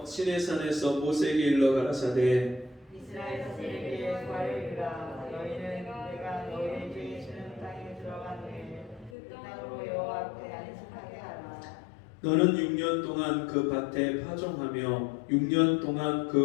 시내산에서 모세에게 일러 가라사대 이스라엘 자손에게 말하리라. 너희는 내가 너희에게 주는 땅에 들어간 후에 그 땅으로 여호와 앞에 안식하게 하라. 너는 6년 동안 그 밭에 파종하며 6년 동안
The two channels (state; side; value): drops out; right; at 9.2 s